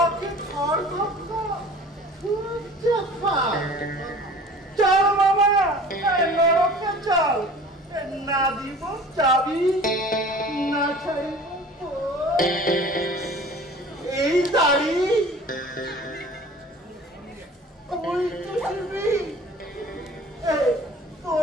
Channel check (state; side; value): normal; both; correlation 0.45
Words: ঘর ধাক্কা? চল মামা, নরকে চল, না দিব চাবি, না ছাড়িব এই দাড়ি। ওই চুষিবি,